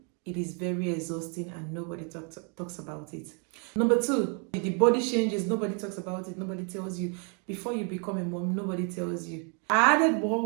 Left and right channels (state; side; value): quieter; left; 38.4 dB